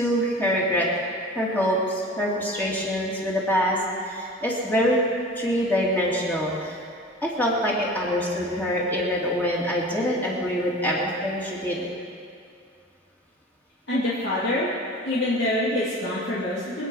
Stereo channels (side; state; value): both; normal; correlation 0.38